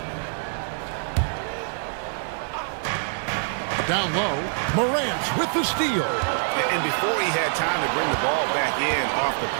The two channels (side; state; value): left; silent; digital silence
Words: Down low, Morant with the steal. And before he had time to bring the ball back in off the